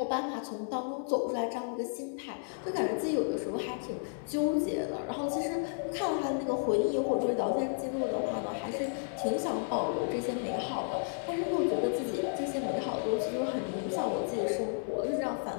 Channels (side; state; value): right; silent; 56 dB below the other